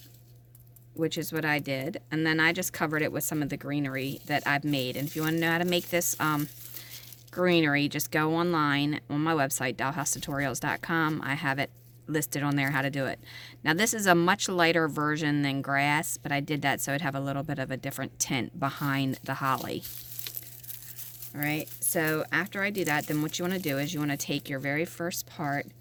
which is what I did, and then I just covered it with some of the greenery that I've made. And if you want to know how to make this greenery, just go online on my website, dollhousetutorials.com. I have it listed on there how to do it. Now this is a much lighter version than grass, but I did that so it'd have a little bit of a different tint behind the holly. Alright, so after I do that, then what you want to do is you want to take your very first part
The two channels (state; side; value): identical; both; correlation 1.00